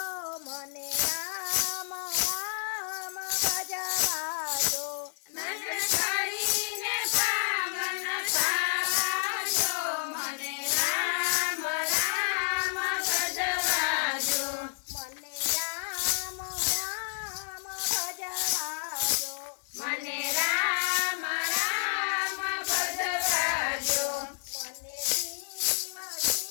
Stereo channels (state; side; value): silent; right; digital silence